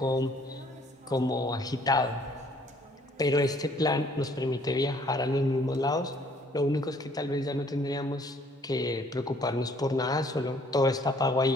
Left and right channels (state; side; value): normal; both; correlation 0.61